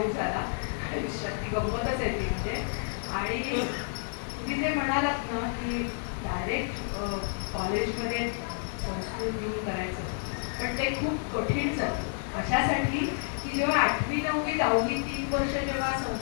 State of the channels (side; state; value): right; silent; 58 dB below the other